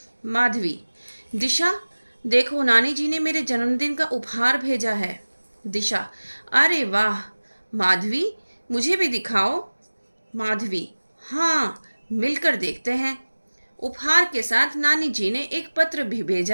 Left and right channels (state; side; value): inverted; both; correlation -1.00